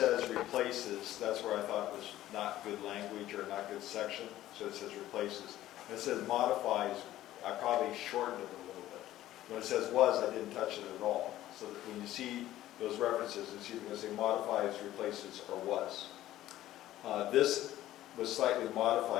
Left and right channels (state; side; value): quieter; right; 14.1 dB